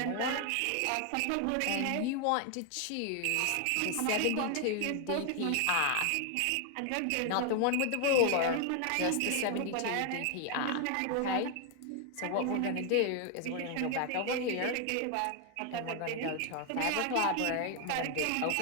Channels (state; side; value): different; both; correlation 0.00